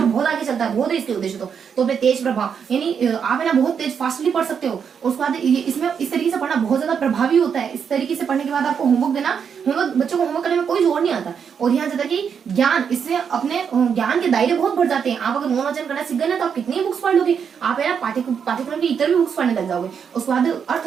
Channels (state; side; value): quieter; left; 7.1 dB